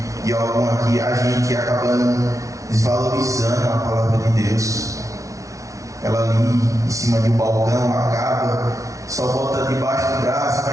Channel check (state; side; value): late; left; 0.16 ms